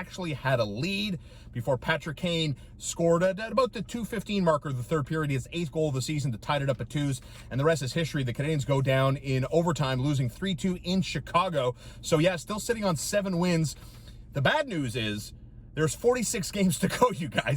had a lead before Patrick Kane scored at about the 2:15 marker of the third period, his 8th goal of the season to tie it up at 2s, and the rest is history. The Canadiens go down in overtime, losing 3-2 in Chicago. So yeah, still sitting on 7 wins. The bad news is there's 46 games to go, you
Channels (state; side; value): identical; both; correlation 1.00